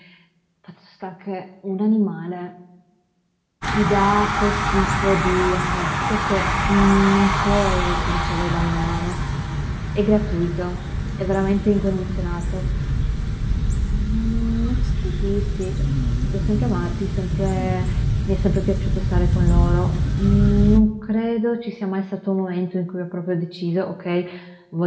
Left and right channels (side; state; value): both; identical; correlation 1.00